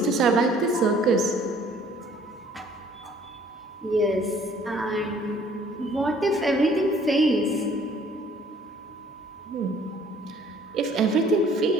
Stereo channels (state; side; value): normal; both; correlation 0.57